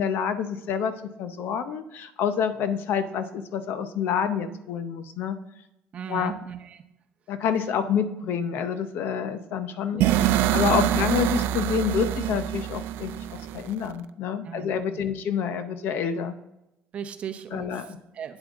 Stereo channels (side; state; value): both; normal; correlation 0.34